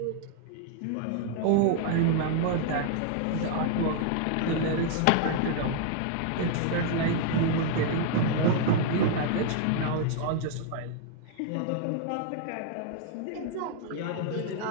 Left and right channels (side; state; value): both; different; correlation 0.00